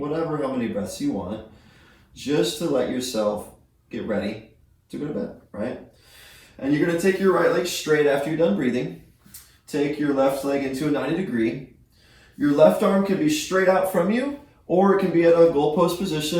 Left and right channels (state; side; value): identical; both; correlation 1.00